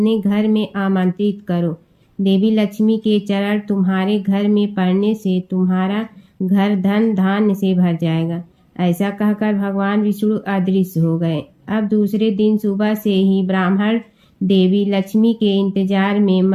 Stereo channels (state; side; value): identical; both; correlation 1.00